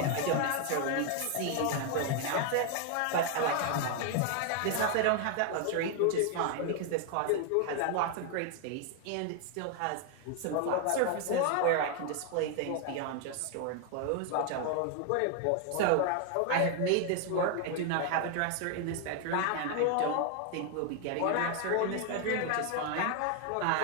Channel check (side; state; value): both; different; correlation 0.00